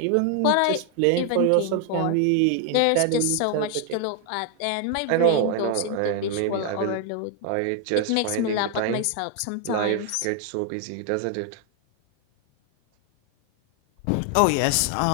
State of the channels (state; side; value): different; both; correlation 0.00